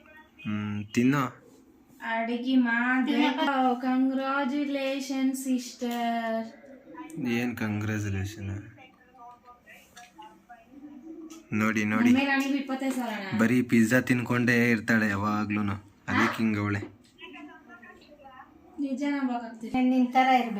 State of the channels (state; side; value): identical; both; correlation 1.00